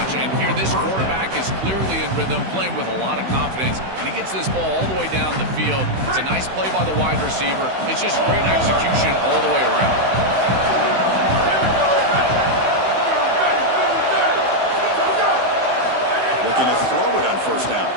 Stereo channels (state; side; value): late; left; 16 ms